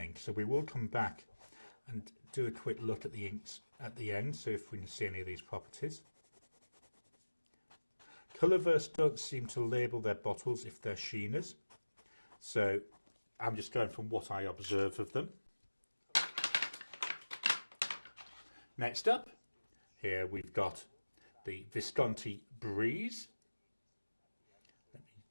so we will come back and do a quick look at the inks at the end, so if we can see any of these properties. Colourverse don't seem to label their bottles if they're sheeners, so I'm just going from what I observe of them. Next up, here we've got the Visconti Breeze. Let me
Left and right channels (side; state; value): both; inverted; correlation -1.00